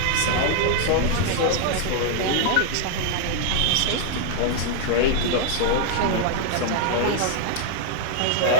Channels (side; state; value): both; different; correlation -0.01